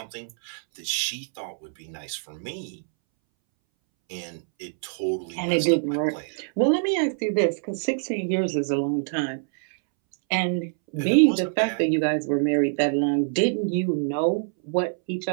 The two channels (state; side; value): silent; left; 62 dB below the other